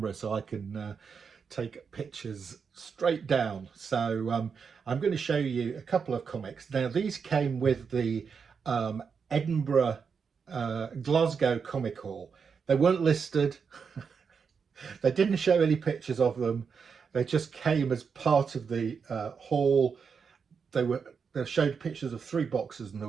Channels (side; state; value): left; quieter; 6.0 dB